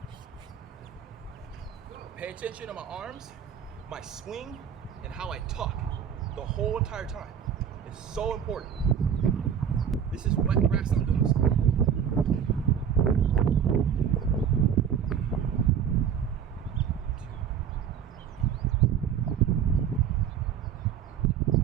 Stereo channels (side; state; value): left; quieter; 8.2 dB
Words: Pay attention to my arms, my swing, and how I tuck the whole entire time. It's so important. This is wet grass I'm doing this.